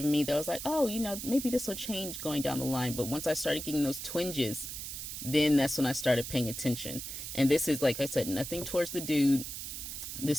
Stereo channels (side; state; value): right; noise; hiss, 7 dB below the sound